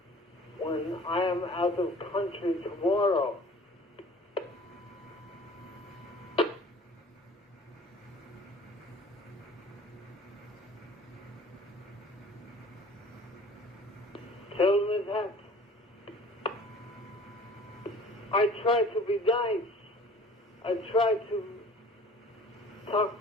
when I am out of country tomorrow? Tell me that. I try to be nice. I try to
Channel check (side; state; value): both; normal; correlation 0.47